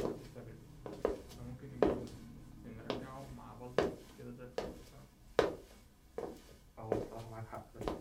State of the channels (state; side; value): identical; both; correlation 1.00